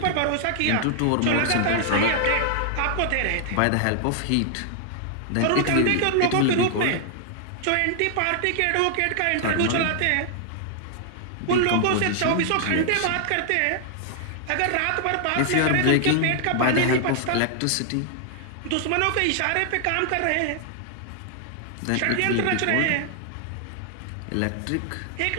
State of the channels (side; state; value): both; different; correlation 0.00